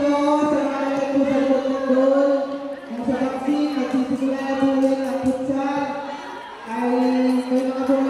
sa mga nagpo sa likod ng doon. Kung sa vaccine, magsisigura na po rin ang futsal. Ay may mga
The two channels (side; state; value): both; identical; correlation 1.00